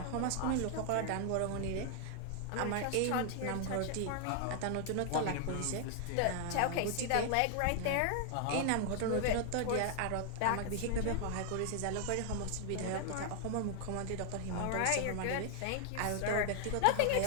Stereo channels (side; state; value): both; different; correlation 0.00